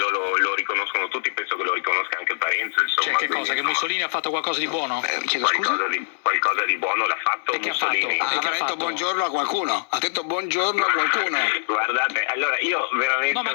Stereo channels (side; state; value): right; silent; digital silence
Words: lo riconoscono tutti, penso che lo riconosca anche Parenzo, insomma. Cioè, che cosa? Che Mussolini ha fatto qualcosa di buono? Qualcosa di buono l'ha fatto Mussolini. Ha detto buongiorno a qualcuno? Ha detto buongiorno a qualcuno? Guardate, allora io veramente... No, ma